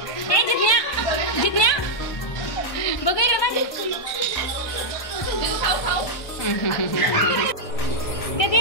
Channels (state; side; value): late; right; 1.2 ms